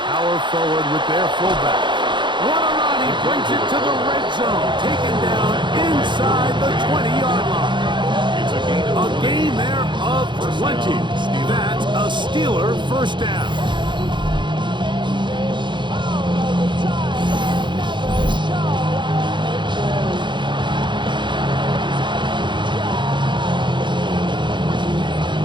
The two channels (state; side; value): late; left; 0.23 ms